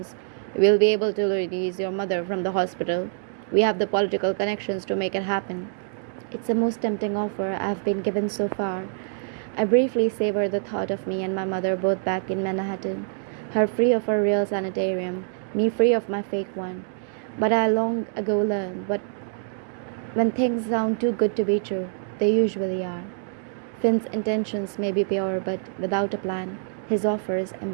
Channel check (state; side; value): silent; left; digital silence